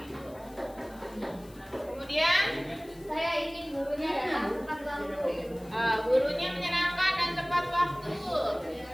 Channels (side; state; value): left; noise; hiss, 25 dB below the sound